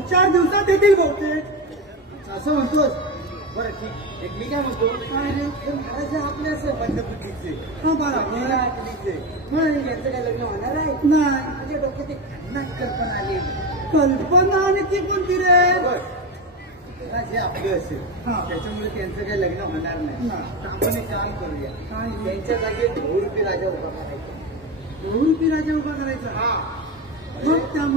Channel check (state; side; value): normal; both; correlation 0.19